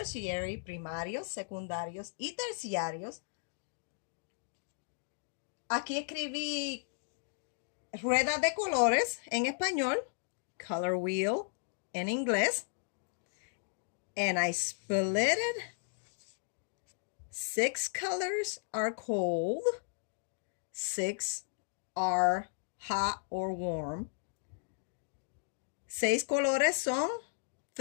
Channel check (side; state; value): right; silent; digital silence